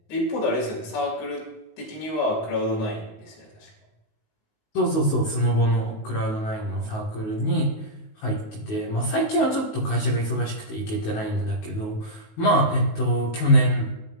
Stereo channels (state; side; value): late; right; 19 ms